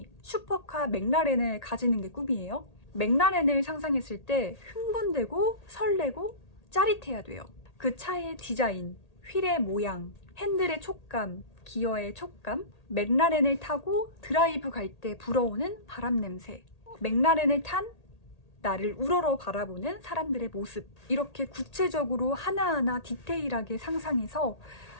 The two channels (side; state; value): right; late; 1.8 ms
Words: 슈퍼카 맥라렌을 가지는 게 꿈이에요. 맥라렌을 상상했을 때 흥분되고 설레고 짜릿해야 돼요. 그 차의 디자인, 휠의 모양, 핸들의 촉감, 기어의 촉감, 맥라렌을 타고 드라이브 갈 때 불어오는 바람 냄새, 맥라렌을 탄 나를 우러러 바라보는 사람들의 모습, 이렇게 구체적으로 하나하나 디테일하게 상상해서